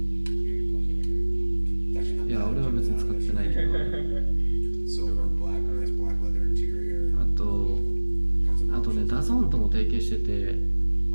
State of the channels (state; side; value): inverted; both; correlation -1.00